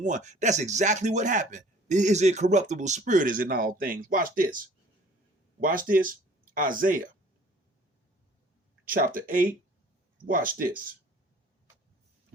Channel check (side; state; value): both; normal; correlation 0.52